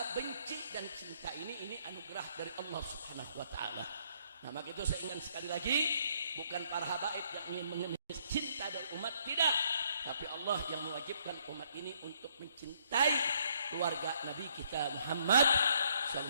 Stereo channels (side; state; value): both; inverted; correlation -0.68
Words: benci dan cinta ini anugerah dari Allah Subhanahu wa taala. Nah, maka itu saya ingat sekali lagi, bukan para habaib yang ingin mengemis cinta dari umat, tidak, tapi Allah yang mewajibkan umat ini untuk mencintai keluarga Nabi kita Muhammad